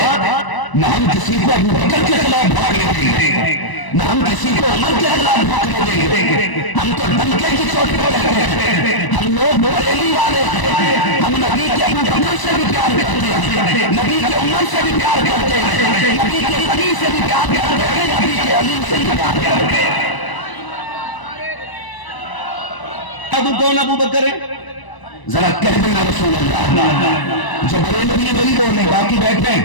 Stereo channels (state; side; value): late; right; 1.0 ms